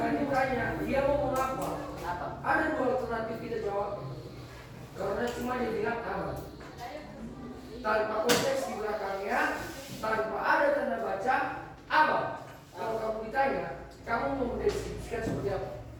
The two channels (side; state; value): both; identical; correlation 1.00